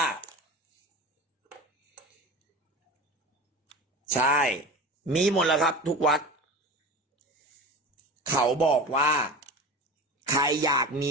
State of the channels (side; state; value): both; normal; correlation 0.31